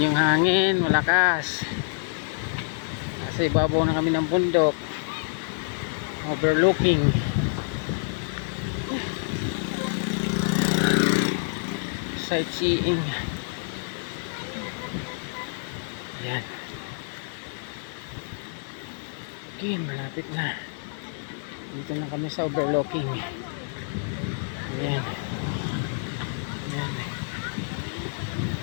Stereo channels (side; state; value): right; silent; 60 dB below the other